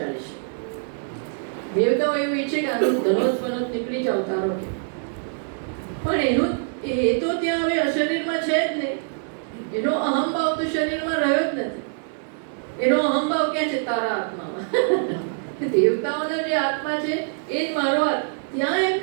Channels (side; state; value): left; silent; digital silence